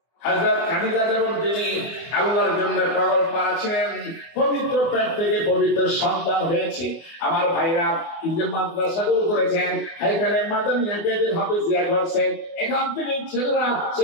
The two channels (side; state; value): right; late; 24 ms